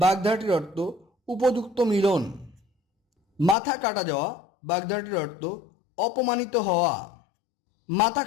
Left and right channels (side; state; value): right; drops out; at 3.6 s